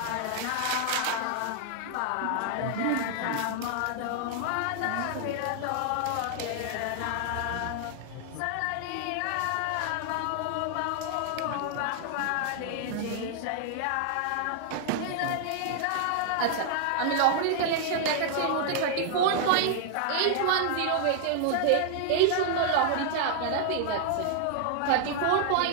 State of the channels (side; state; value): both; different; correlation 0.00